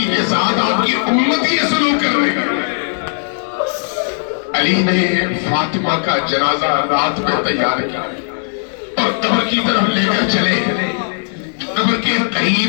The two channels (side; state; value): right; silent; digital silence